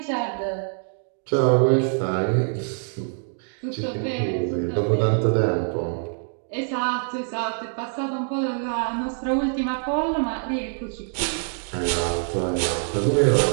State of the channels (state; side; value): silent; left; 60 dB below the other